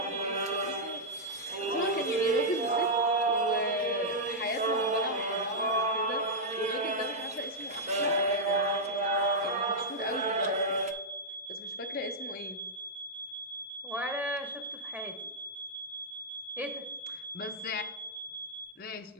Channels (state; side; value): normal; both; correlation -0.07